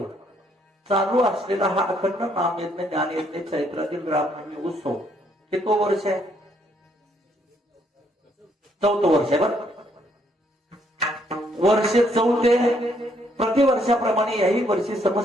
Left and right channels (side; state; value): both; normal; correlation 0.70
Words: चालू असलेला हा अखंड नामयज्ञ ज्ञानयज्ञ चैत्रातील रामनवमी उत्सव कितवं वर्ष आहे? 4थं वर्ष आहे. बरं, वर्ष 4 प्रतिवर्षाप्रमाणे याही वर्षी